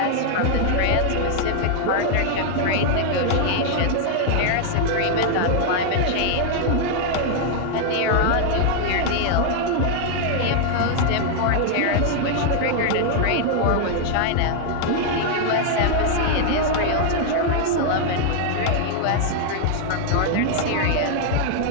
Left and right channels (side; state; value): both; different; correlation 0.00